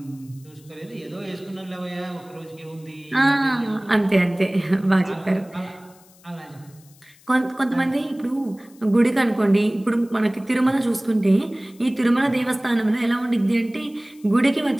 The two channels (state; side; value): noise; left; hiss, 27 dB below the sound